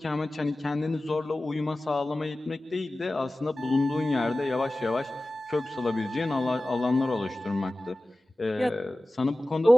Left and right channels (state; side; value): normal; both; correlation 0.96